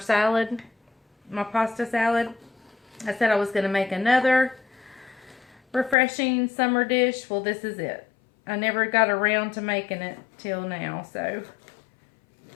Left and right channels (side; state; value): right; drops out; at 6.0 s